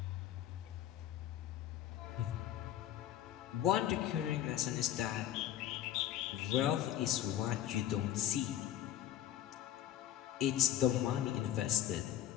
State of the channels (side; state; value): right; quieter; 11.9 dB